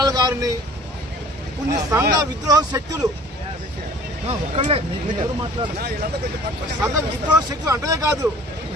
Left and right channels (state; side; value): normal; both; correlation 0.49